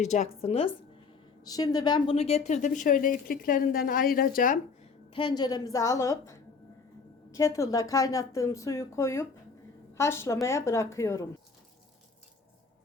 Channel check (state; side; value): quieter; right; 4.9 dB